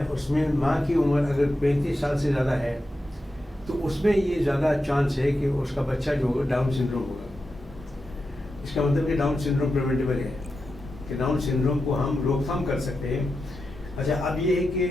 उसमें माँ की उम्र अगर 35 साल से ज़्यादा है, तो उसमें ये ज़्यादा चांस है कि उसका बच्चा जो होगा डाउन सिंड्रोम होगा. इसका मतलब कि डाउन सिंड्रोम प्रिवेंटेबल है, कि डाउन सिंड्रोम को हम रोकथाम कर सकते हैं. अच्छा, अब ये है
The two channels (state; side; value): normal; both; correlation 0.89